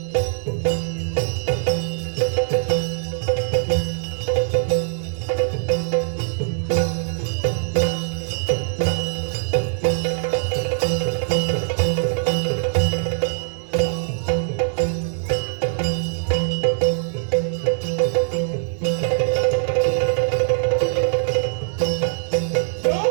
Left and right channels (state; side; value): silent; left; digital silence